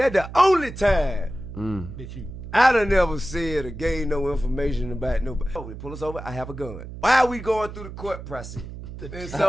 the only time that I done never said or gave no information about nobody. Oh, they pull us over, I have a gun. Why are we going through the court process? And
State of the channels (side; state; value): right; noise; hum, 11 dB below the sound